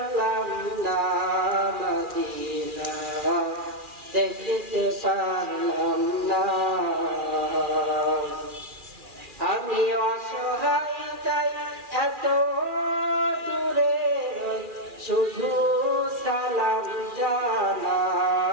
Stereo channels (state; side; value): late; left; 2.4 ms